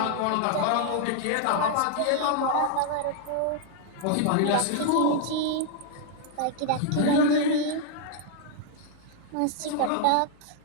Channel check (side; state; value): both; different; correlation 0.00